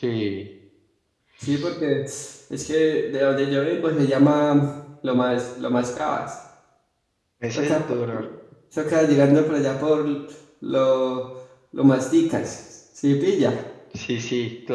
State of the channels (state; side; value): identical; both; correlation 1.00